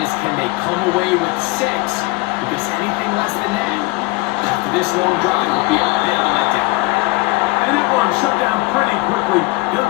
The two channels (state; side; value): quieter; right; 23.3 dB